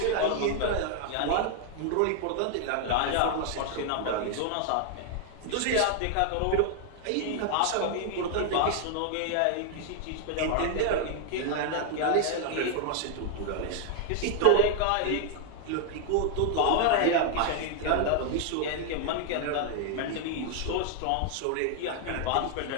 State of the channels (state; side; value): different; both; correlation 0.00